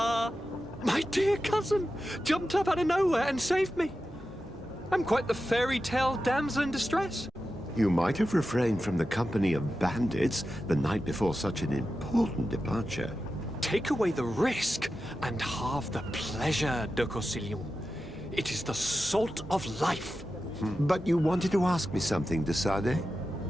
My dear cousin jumped up out of nowhere and saved me. I'm quite the fairy tale damsel in distress. You might have refrained from the company of bandits the night before such an important departure. Take away the risk and halve the pleasure, de Corsilion. It is the salt of life. But you wanted to ask me something, de Sardet?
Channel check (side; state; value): both; normal; correlation 0.91